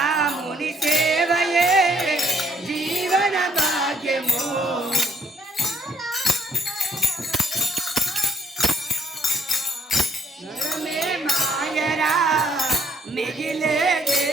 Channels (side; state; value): both; normal; correlation 0.70